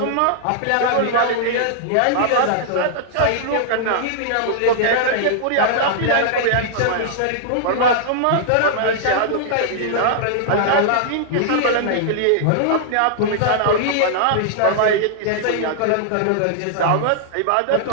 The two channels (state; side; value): different; both; correlation -0.01